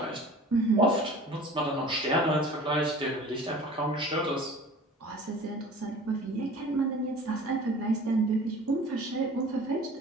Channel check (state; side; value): normal; both; correlation 0.43